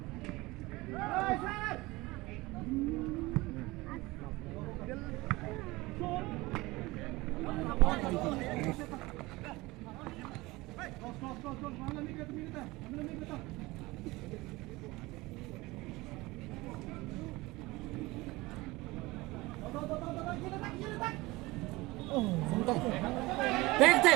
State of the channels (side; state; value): left; quieter; 21.2 dB